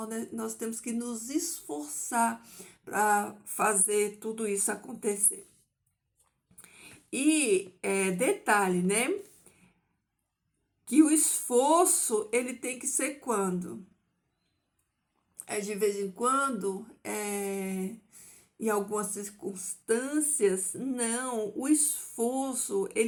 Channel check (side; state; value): both; identical; correlation 1.00